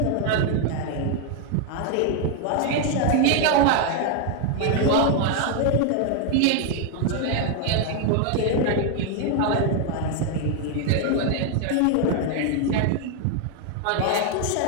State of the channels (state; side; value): different; both; correlation 0.01